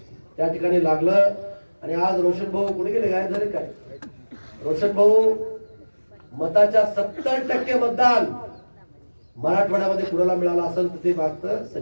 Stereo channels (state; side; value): inverted; both; correlation -1.00